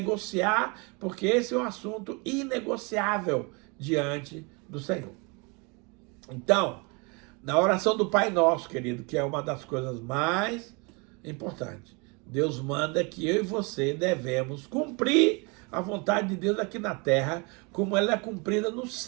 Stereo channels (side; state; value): left; quieter; 30.4 dB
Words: porque esse é um assunto inegociável diante do Senhor. Então, na oração do Pai Nosso, querido, que é uma das coisas mais importantes, Deus manda que eu e você devemos cumprir a vontade de Deus aqui na terra, como ela é cumprida no